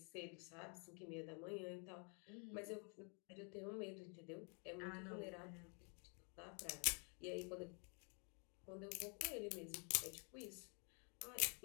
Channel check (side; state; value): right; quieter; 37.7 dB